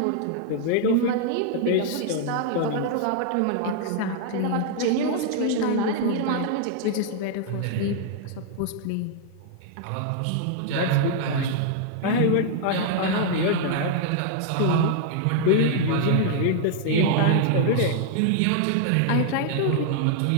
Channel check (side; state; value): both; different; correlation -0.01